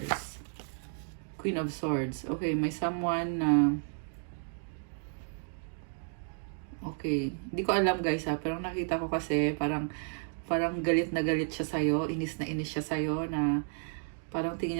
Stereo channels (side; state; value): left; silent; 56 dB below the other